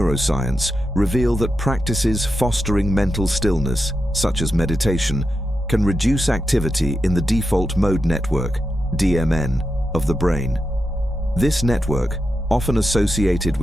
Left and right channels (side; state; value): both; normal; correlation 0.87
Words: reveal that practices fostering mental stillness, such as meditation, can reduce activity in the default mode network, DMN, of the brain. This network, often associated